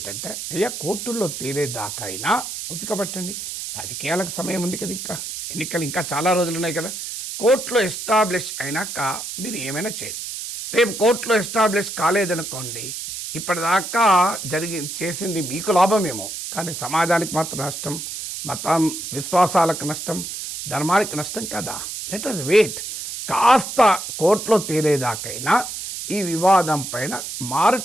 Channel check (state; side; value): noise; right; hiss, 7 dB below the sound